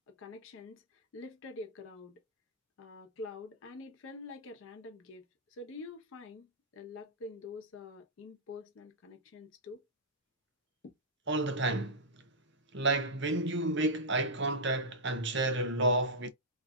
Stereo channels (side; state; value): both; normal; correlation -0.11